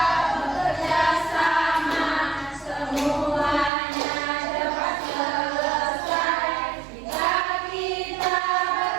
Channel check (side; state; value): left; drops out; at 3.7 s